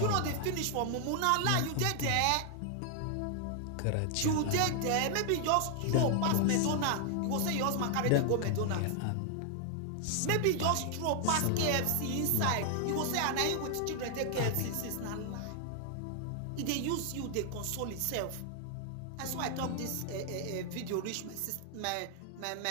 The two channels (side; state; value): both; different; correlation 0.00